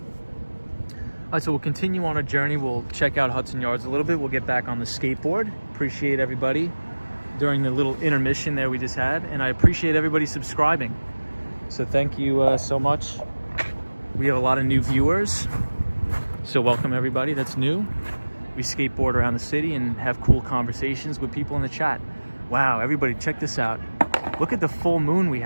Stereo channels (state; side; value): inverted; both; correlation -1.00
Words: All right, so we'll continue on our journey. We'll check out Hudson Yards a little bit. We'll get back on the skateboard. Appreciate everybody during the little intermission there we just had. And I appreciate everybody subscribing. So thank you so much. We have a lot of new viewers. So welcome everybody that's new. We skateboard around the city and have cool conversations with people in the chat. Wow, everybody check this out. Look at the full moon we